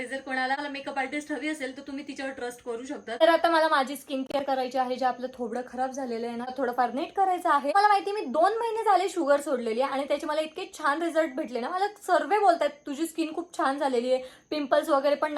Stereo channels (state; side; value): identical; both; correlation 1.00